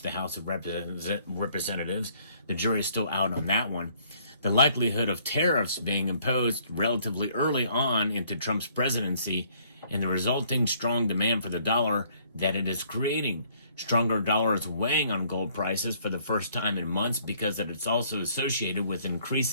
House of Representatives. The jury is still out on that one. The likelihood of tariffs being imposed relatively early on into Trump's presidency and the resulting strong demand for the dollar that it is creating. Stronger dollar is weighing on gold prices for the first time in months because it's also associated with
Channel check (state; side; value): inverted; both; correlation -0.63